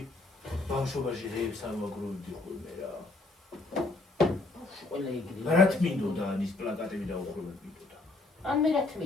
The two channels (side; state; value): right; quieter; 3.2 dB